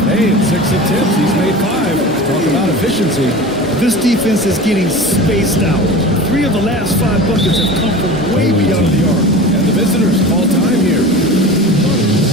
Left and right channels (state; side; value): normal; both; correlation 0.34